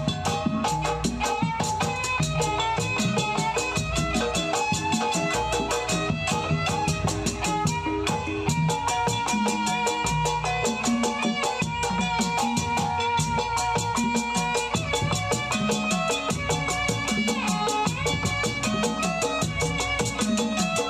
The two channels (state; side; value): identical; both; correlation 1.00